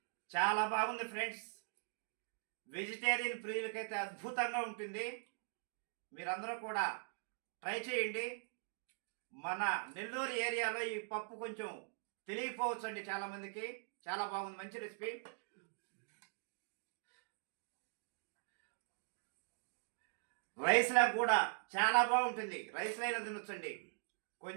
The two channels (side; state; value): left; silent; digital silence